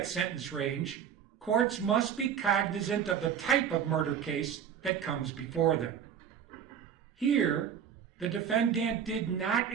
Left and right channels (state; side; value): quieter; left; 8.3 dB